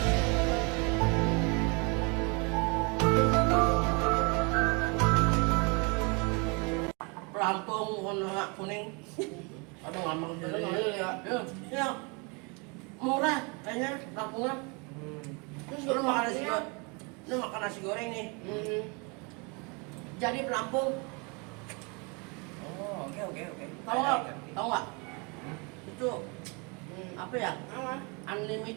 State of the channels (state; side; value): quieter; left; 31.4 dB